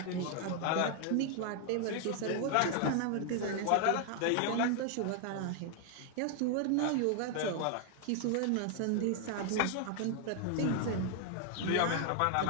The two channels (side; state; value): both; different; correlation 0.00